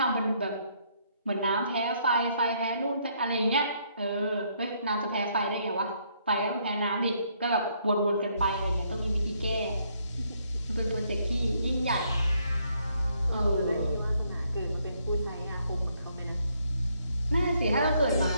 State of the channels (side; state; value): both; inverted; correlation -0.71